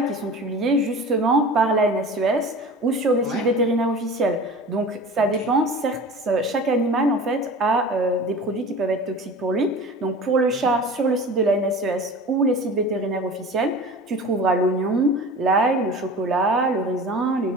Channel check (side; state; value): both; normal; correlation 0.38